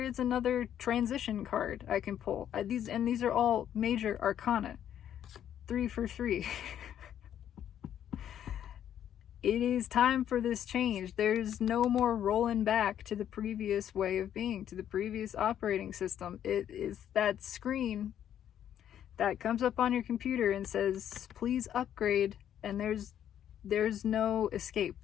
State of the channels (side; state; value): right; quieter; 10.2 dB